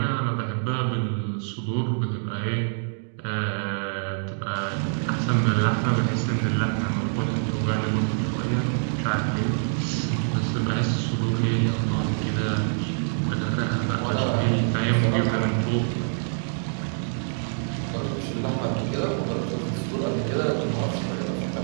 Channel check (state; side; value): silent; left; digital silence